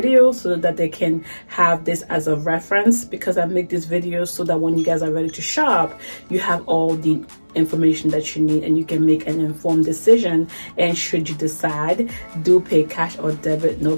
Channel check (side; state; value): both; inverted; correlation -1.00